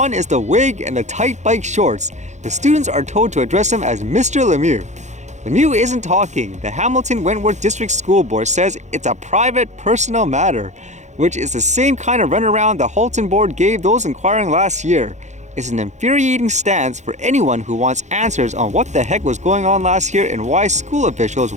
is the wig and the tight bike shorts. The students are told to address him as Mr. Lemieux. Lemieux isn't talking. The Hamilton Wentworth District School Board says it's a private, personal matter, which is the same kind of runaround the Halton Board gave those inquiring last year. It's an infuriating stance for anyone who wants answers on what the heck was going on last year and why school officials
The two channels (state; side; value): late; left; 0.34 ms